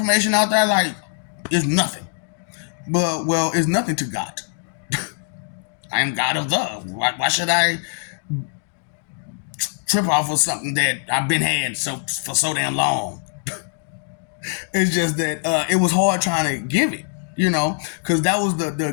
out there like it's nothing. But well, it's nothing to God. I am God of the. Why should I trip off of something that I've been had for so damn long? It's just that it was hard trying to give it, because that was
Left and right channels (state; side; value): silent; right; 59 dB below the other